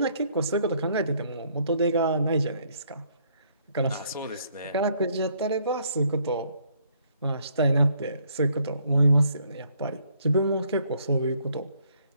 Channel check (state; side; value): inverted; both; correlation -0.67